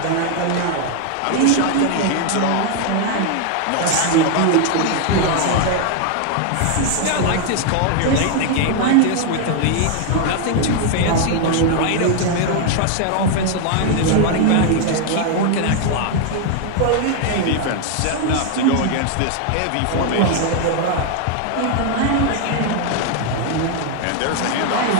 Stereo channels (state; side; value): different; both; correlation 0.00